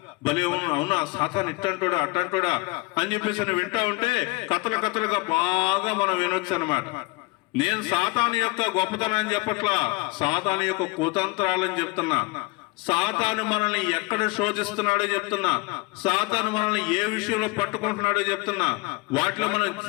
భలే అవునా సాతాను ఇట్టంటోడా అట్టంటోడా అని చెప్పేసి వింటా ఉంటే కథలుగా బాగా మనం వినొచ్చు అనమాట. నేను సాతాను యొక్క గొప్పతనాన్ని చెప్పట్లా, సాతాను యొక్క కుతంత్రాలని చెప్తున్నా. సాతాను మనల్ని ఎక్కడ శోధిస్తున్నాడో చెప్తున్నా, సాతాను మనల్ని ఏ విషయంలో పట్టుకుంటున్నాడో చెప్తున్నా. వాటిలో మనం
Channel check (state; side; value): quieter; right; 24.4 dB